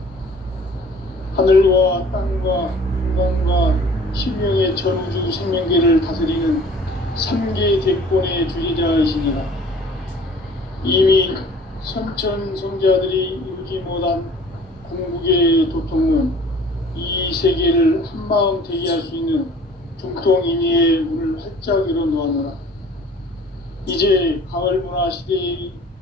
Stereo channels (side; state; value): both; normal; correlation 0.50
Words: 하늘과 땅과 인간과 신명의 전우주 생명계를 다스리는 3개 대권의 주제자이시니라. 이미 선천 성자들이 이루지 못한 궁극의 도통은 이 세계를 한마음 되게 할 수 있는 중통인의의 문을 활짝 열어놓았노라. 이제 가을 문화 시대의